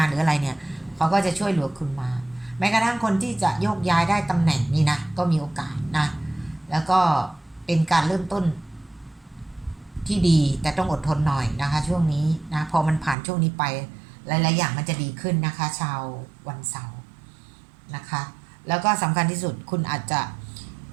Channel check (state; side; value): drops out; left; at 13.2 s